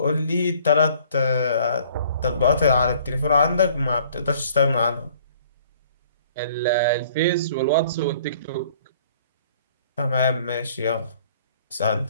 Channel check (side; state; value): both; inverted; correlation -0.57